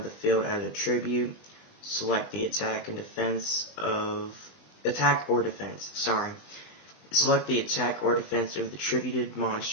the field as a tribute. Select the attack or defense. Select the attack or defense of the tributed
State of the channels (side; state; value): right; late; 20 ms